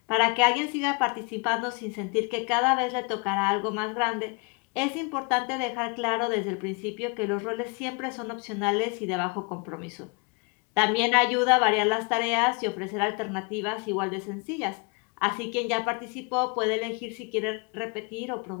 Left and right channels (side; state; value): right; quieter; 31.9 dB